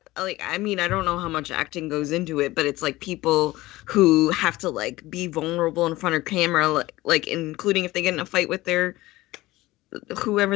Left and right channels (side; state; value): right; quieter; 18.5 dB